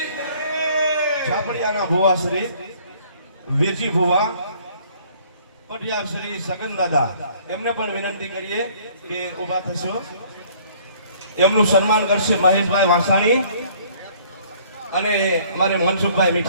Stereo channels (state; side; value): inverted; both; correlation -0.57